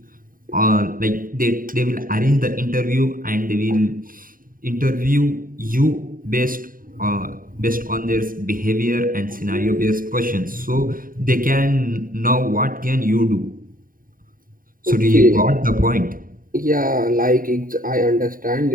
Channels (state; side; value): late; left; 0.41 ms